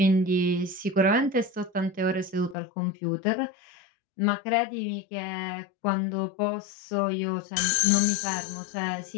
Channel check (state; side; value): drops out; right; at 2.6 s